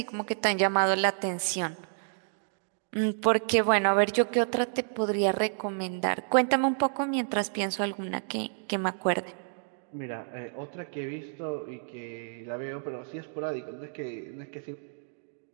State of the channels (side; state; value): left; silent; digital silence